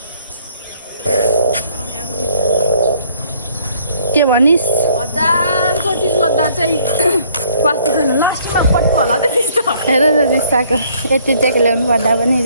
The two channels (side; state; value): both; inverted; correlation -0.61